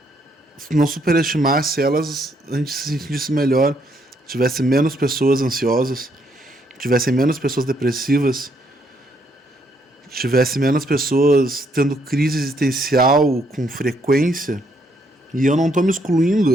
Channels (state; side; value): normal; both; correlation 0.72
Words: não superestimasse elas, a gente se sentisse melhor, tivesse menos pessoas ansiosas, tivesse menos pessoas depressivas, tivesse menos pessoas tendo crise existencial com frequência. E eu não estou me